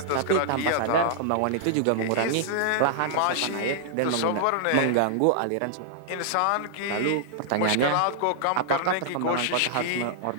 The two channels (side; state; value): both; different; correlation -0.01